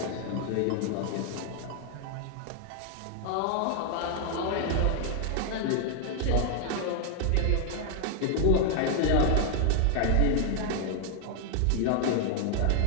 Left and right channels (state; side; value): different; both; correlation 0.00